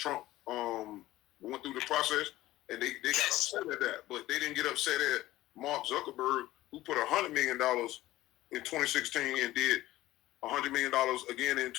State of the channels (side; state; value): right; quieter; 16.3 dB